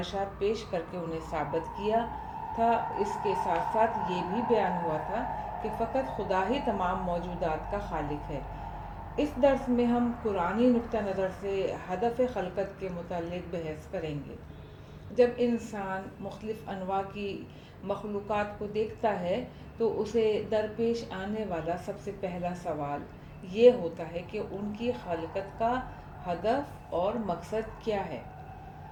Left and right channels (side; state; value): both; identical; correlation 1.00